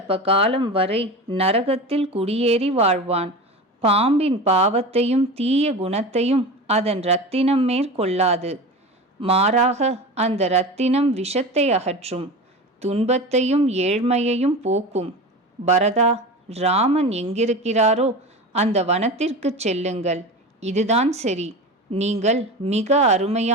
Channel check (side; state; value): both; normal; correlation 0.29